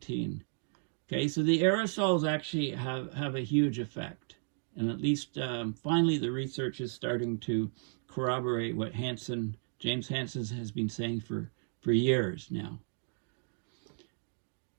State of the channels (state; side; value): silent; left; 55 dB below the other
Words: Okay, so the aerosols actually have a huge effect. And at least finally the research is starting to corroborate what James Hansen has been saying for years now.